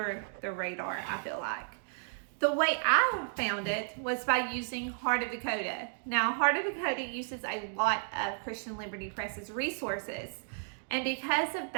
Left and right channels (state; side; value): silent; left; digital silence